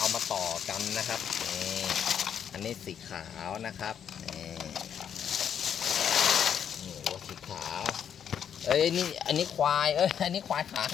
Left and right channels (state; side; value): quieter; right; 8.5 dB